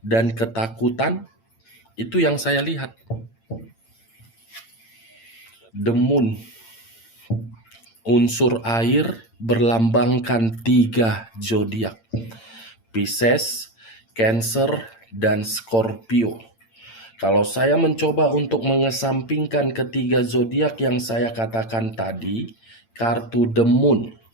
dan ketakutan, itu yang saya lihat. The Moon, unsur air berlambangkan 3 zodiak. Pisces, Cancer, dan Scorpio. Kalau saya mencoba untuk mengesampingkan ketiga zodiak yang saya katakan tadi, kartu The Moon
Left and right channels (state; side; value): late; right; 8.8 ms